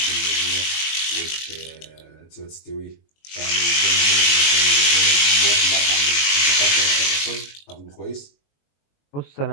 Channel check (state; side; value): late; right; 21 ms